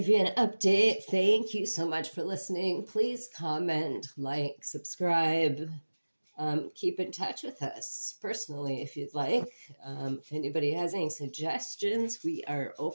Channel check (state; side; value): inverted; both; correlation -1.00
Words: you an update. Thank you so much for listening. Please comment, like, subscribe. Keep in touch with us personally if you'd like. If anybody has any suggestions, we are